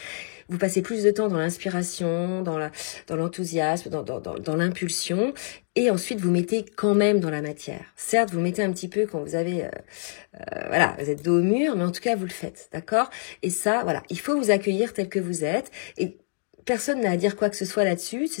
Vous passez plus de temps dans l'inspiration, dans l'enthousiasme, dans l'impulsion, et ensuite vous mettez quand même dans la matière. Certes, vous mettez un petit peu quand vous avez, voilà, vous êtes dos au mur, mais en tout cas, vous le faites, d'accord? Et ça, voilà, il faut vous accueillir tel que vous êtes, et personne n'a à dire quoi que ce soit là-dessus,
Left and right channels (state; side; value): silent; right; digital silence